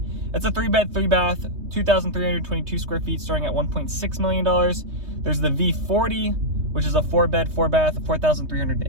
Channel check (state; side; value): late; left; 3.2 ms